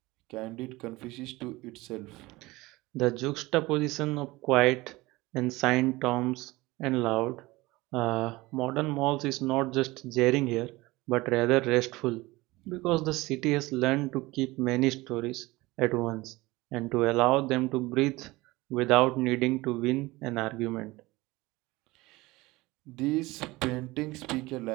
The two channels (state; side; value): quieter; left; 20.9 dB